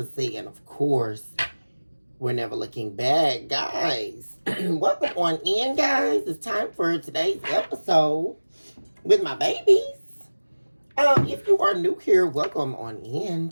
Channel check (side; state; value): both; inverted; correlation -1.00